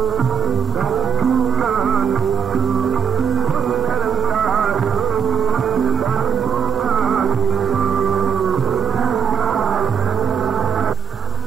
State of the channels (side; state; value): left; quieter; 7.1 dB